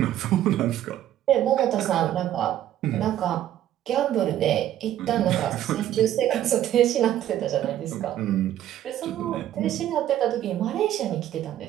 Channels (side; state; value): left; quieter; 12.0 dB